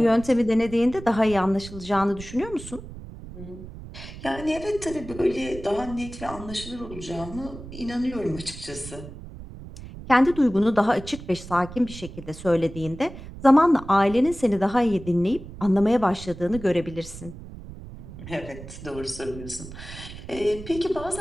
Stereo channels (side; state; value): right; noise; rumble, 13 dB below the sound